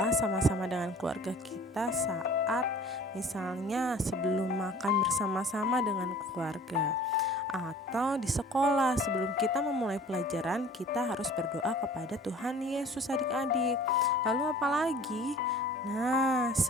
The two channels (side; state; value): both; normal; correlation 0.47